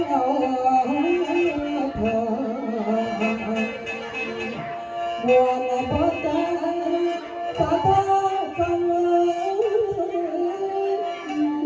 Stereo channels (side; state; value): both; identical; correlation 1.00